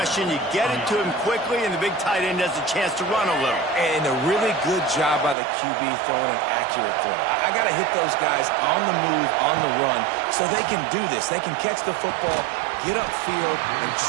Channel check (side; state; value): left; drops out; at 5.4 s